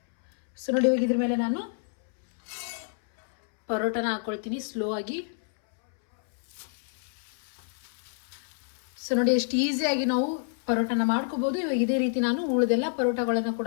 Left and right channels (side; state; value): right; silent; 59 dB below the other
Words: ಸೊ ನೋಡಿ ಇವಾಗ ಇದ್ರ ಮೇಲೆ ನಾನು ಪರೋಟನ ಹಾಕೊಳ್ತೀನಿ ಸ್ಲೋ ಆಗಿ. ಸೊ ನೋಡಿ ಎಷ್ಟು ಈಸಿಯಾಗಿ ನಾವು ಪರೋಟನ ಮಾಡ್ಕೋಬಹುದು. ಇವಾಗ ಇದೇ ರೀತಿ ನಾನು ಉಳಿದೆಲ್ಲ ಪರೋಟಗಳನ್ನ